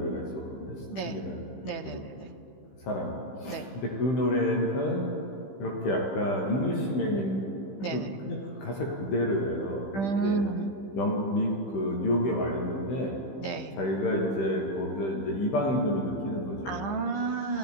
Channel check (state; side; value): late; right; 15 ms